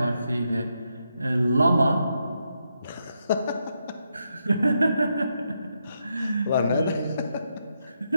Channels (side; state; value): both; inverted; correlation -0.82